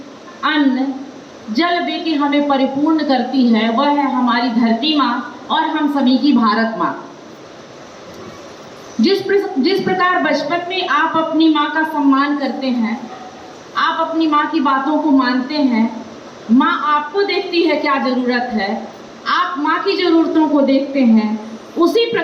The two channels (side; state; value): both; identical; correlation 1.00